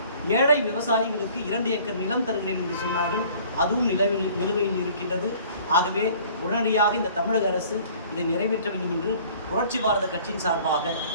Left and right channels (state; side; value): inverted; both; correlation -0.52